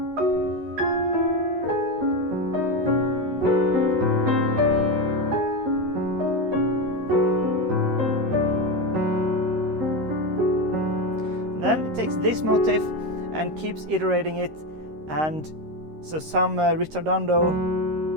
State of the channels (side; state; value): left; late; 13 ms